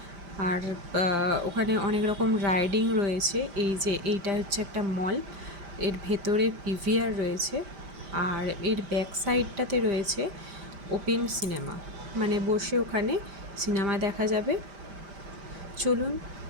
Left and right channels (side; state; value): left; late; 5.0 ms